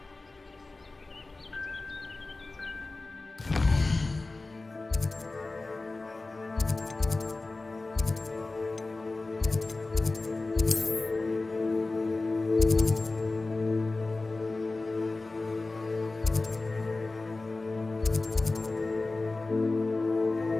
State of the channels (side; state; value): right; quieter; 3.4 dB